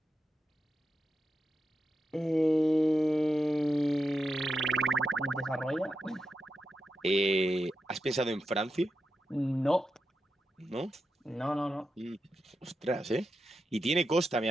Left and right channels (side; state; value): both; normal; correlation 0.88